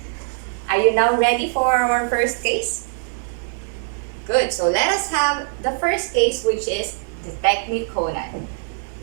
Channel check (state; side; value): silent; left; digital silence